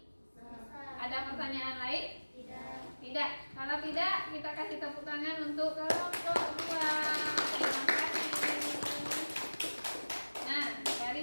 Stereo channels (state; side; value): inverted; both; correlation -1.00